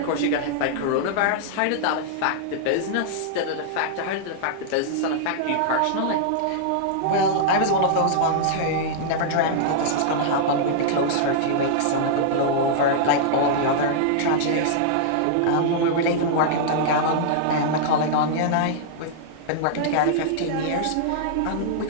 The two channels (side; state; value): both; different; correlation -0.02